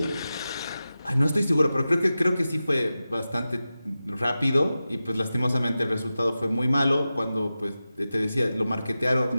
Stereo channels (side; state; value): both; inverted; correlation -0.94